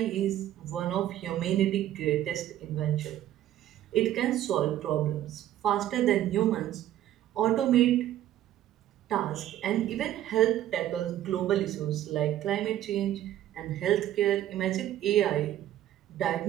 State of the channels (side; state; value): left; quieter; 12.6 dB